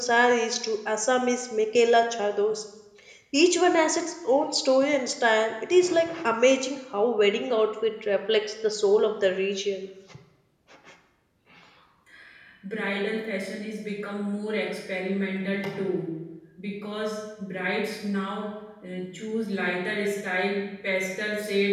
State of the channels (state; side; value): identical; both; correlation 1.00